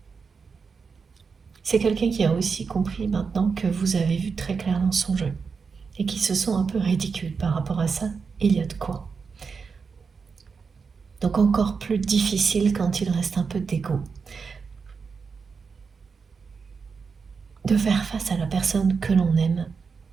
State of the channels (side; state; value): left; quieter; 5.4 dB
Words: C'est quelqu'un qui a aussi compris maintenant que vous avez vu très clair dans son jeu et qui se sent un peu ridicule par rapport à ça. Il y a de quoi. Donc encore plus difficile quand il reste un peu d'ego de faire face à la personne que l'on aime